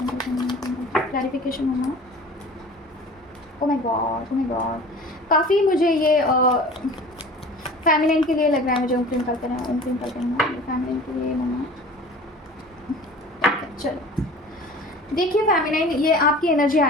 कल्कन, ओम क्रीम कल्कन। क्लैरिफिकेशन होना। Oh my God, oh my god, काफ़ी मुझे ये फेमिनिन के लिए लग रहा है, मुझे ओम क्रीम कल्कन है, ओम क्रीम कल्कन है, फेमिनिन के लिए होना। चलो देखिए फेमिनिन, ये आपकी एनर्जी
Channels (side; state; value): both; normal; correlation 0.42